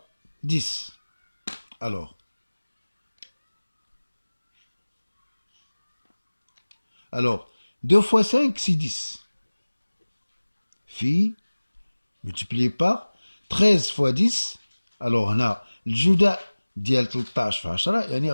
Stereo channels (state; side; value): inverted; both; correlation -1.00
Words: 10. Alors 2 fois 5 c'est 10. Phi multiplié par 13 fois 10. Alors هنا الجداء ديال 13 في 10 يعني